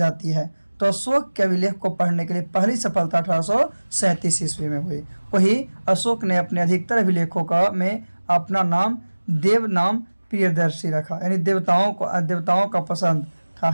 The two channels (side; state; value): both; inverted; correlation -1.00